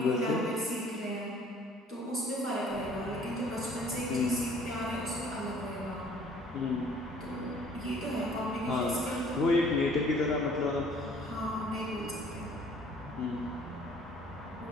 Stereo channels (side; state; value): both; normal; correlation 0.56